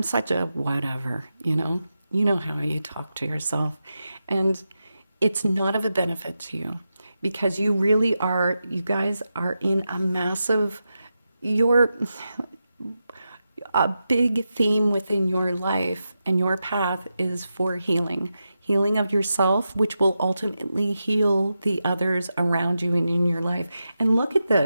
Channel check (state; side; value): inverted; both; correlation -0.89